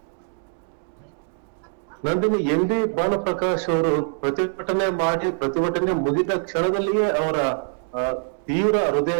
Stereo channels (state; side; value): silent; left; 57 dB below the other